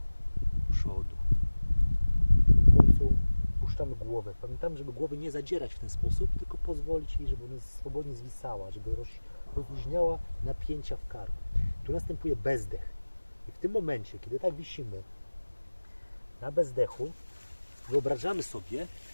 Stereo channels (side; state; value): both; inverted; correlation -1.00